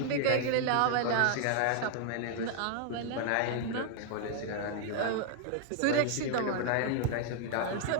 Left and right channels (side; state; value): both; different; correlation 0.00